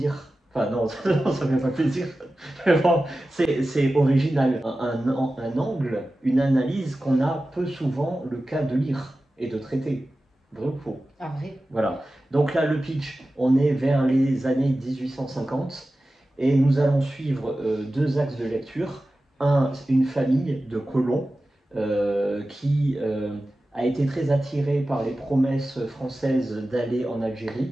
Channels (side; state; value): both; normal; correlation 0.95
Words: Enfin non, ça fait pas plaisir. Bon, c'est original. Un angle, une analyse qu'on a peu souvent le cas de lire et de traiter. Vrai ou faux? Ah, vrai. Voilà. Donc là, le pitch, on est vers les années 1850 et nous allons suivre deux axes de lecture. Une famille de colons qui a été très attirée par les promesses françaises d'aller en